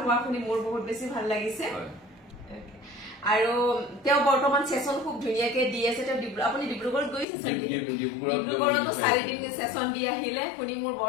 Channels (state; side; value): drops out; right; at 7.2 s